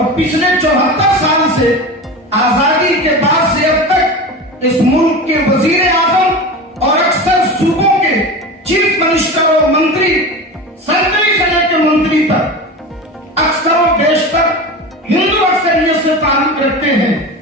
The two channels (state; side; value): normal; both; correlation 0.29